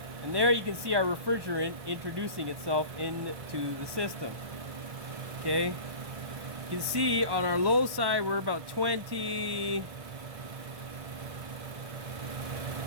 And there you can see our refrigerant introducing itself into the system. Okay. You can see on our low side, we're about 20.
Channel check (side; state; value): left; late; 1.2 ms